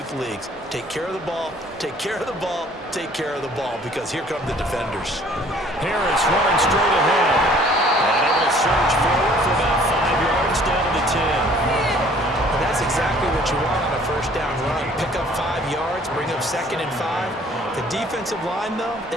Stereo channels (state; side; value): normal; both; correlation 0.55